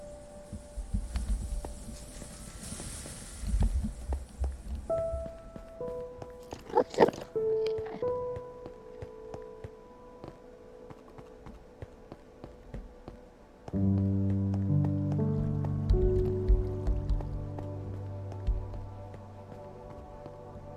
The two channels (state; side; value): identical; both; correlation 1.00